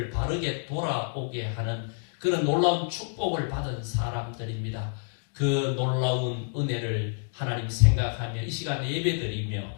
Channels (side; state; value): right; silent; digital silence